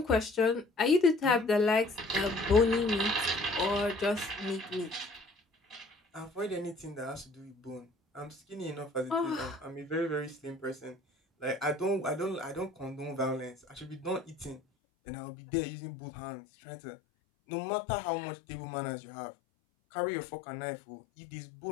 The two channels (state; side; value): drops out; right; at 14.6 s